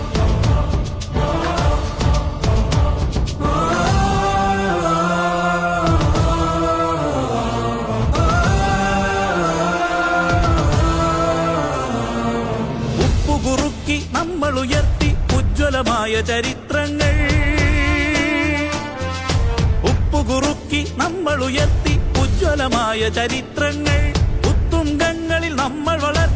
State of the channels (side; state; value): both; identical; correlation 1.00